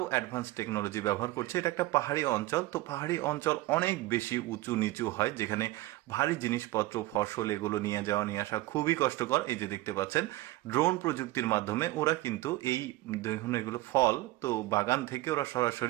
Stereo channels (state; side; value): quieter; left; 18.0 dB